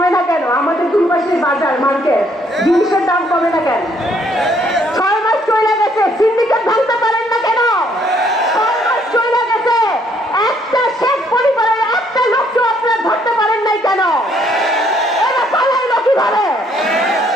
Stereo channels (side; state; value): both; normal; correlation 0.67